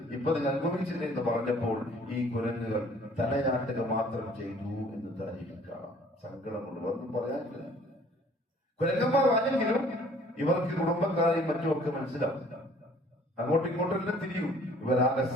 ഇപ്പൊ നിങ്ങൾ അനുഭവിച്ചില്ലേ എന്ന് പറഞ്ഞപ്പോൾ ഈ കുരങ്ങുകൾ തലയാട്ടുക മാത്രം ചെയ്തു എന്ന് താരീഖിക്കാം. സങ്കടമുണ്ട്, ഒന്നും പറയാനില്ല. കുരങ്ങന്മാർ ആണെങ്കിലും ഇവർക്ക് കുടുംബക്കാരെയും മറ്റുമൊക്കെ മനസ്സിലാവും. അങ്ങോട്ടും ഇങ്ങോട്ടെല്ലാം തിരിയും. ഇവരാകെ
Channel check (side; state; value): both; normal; correlation 0.55